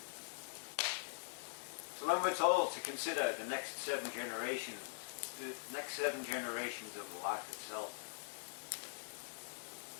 So when we're told to consider the next 7 generations, the next 7 generations of life itself,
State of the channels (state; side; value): silent; right; digital silence